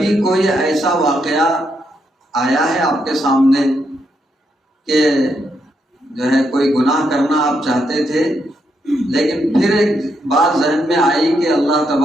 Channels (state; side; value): normal; both; correlation 0.79